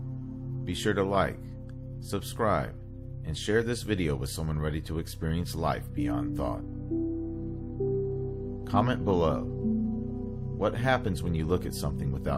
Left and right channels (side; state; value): both; identical; correlation 1.00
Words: be sure to like, subscribe, and share this video with someone ready to experience life beyond thought. Comment below. What happens when you look at something